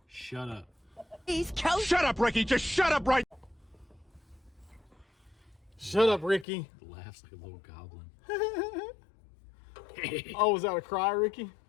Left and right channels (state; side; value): drops out; right; at 6.5 s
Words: Shut up. Shut up, Ricky. Just shut up right. Shut up, Ricky. Laughs like a little goblin. Oh, was that a cry, Ricky?